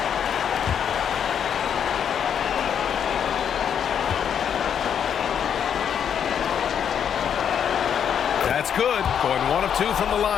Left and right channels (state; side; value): quieter; right; 8.3 dB